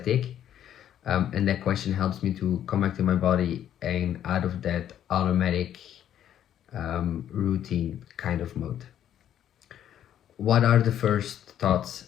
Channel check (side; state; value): right; quieter; 10.6 dB